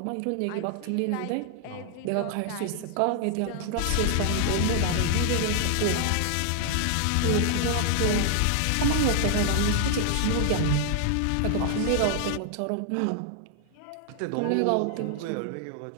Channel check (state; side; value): different; both; correlation 0.00